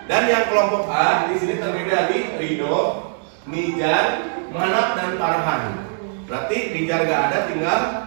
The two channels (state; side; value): silent; left; digital silence